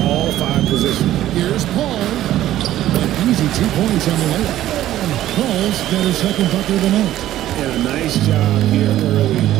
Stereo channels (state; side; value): quieter; left; 13.4 dB